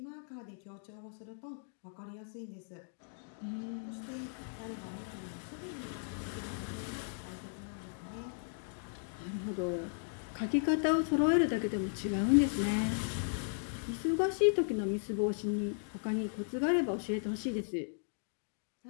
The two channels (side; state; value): right; silent; digital silence